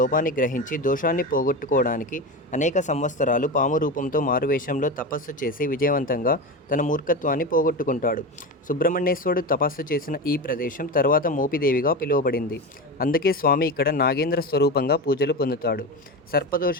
గ్రహించి దోషాన్ని పోగొట్టుకోవడానికి అనేక సంవత్సరాలు పాము రూపంతో మారువేషంలో తపస్సు చేసి విజయవంతంగా తన మూర్ఖత్వాన్ని పోగొట్టుకుంటాడు. సుబ్రహ్మణ్యేశ్వరుడు తపస్సు చేసిన ఈ ప్రదేశం తర్వాత మోపిదేవిగా పిలువబడింది. అందుకే స్వామి ఇక్కడ నాగేంద్ర స్వరూపంగా పూజలు పొందుతాడు.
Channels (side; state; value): both; normal; correlation 0.22